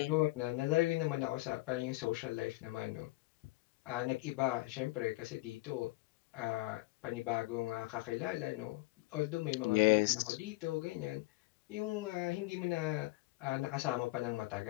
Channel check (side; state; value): right; quieter; 21.1 dB